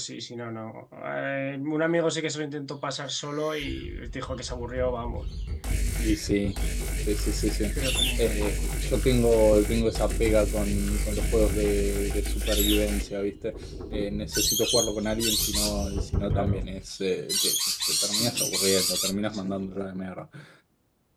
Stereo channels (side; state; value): both; identical; correlation 1.00